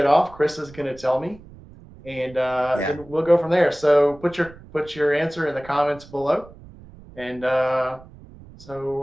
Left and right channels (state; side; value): noise; right; rumble, 21 dB below the sound